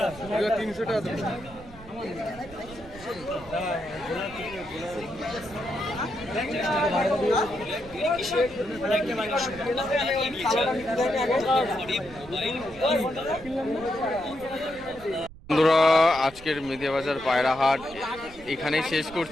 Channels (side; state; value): right; noise; rumble, 19 dB below the sound